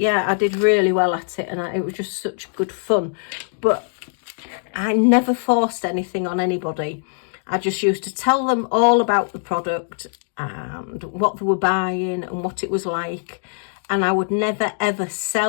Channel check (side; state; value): right; silent; digital silence